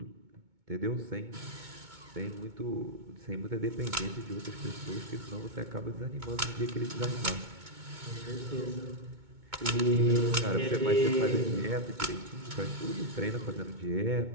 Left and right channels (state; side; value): late; left; 2.2 ms